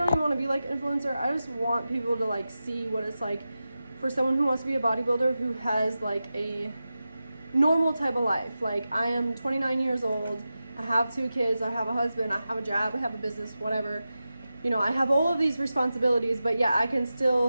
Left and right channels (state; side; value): inverted; both; correlation -0.93